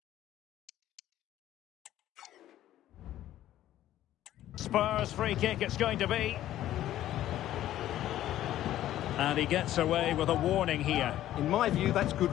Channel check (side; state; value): right; quieter; 13.1 dB